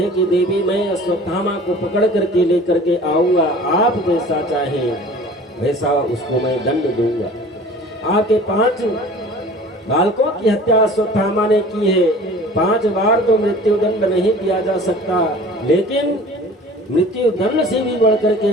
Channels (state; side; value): normal; both; correlation 0.44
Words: कि देवी मैं अश्वत्थामा को पकड़ करके लेकर के आऊंगा, आप जैसा चाहे वैसा उसको मैं दंड दूंगा। आपके 5 बालकों की हत्या अश्वत्थामा ने की है। 5 बार तो मृत्यु दंड नहीं दिया जा सकता, लेकिन मृत्यु दंड से भी बढ़कर के